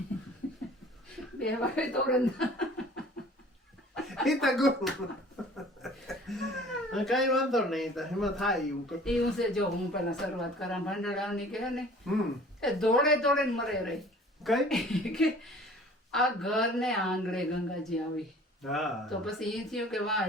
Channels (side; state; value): both; normal; correlation 0.49